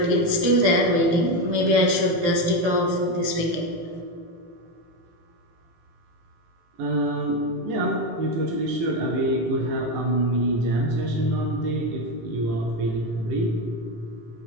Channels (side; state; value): left; late; 17 ms